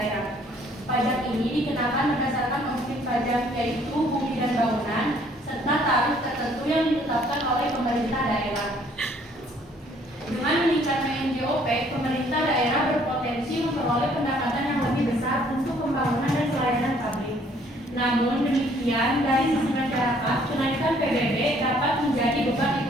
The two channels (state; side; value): normal; both; correlation 0.61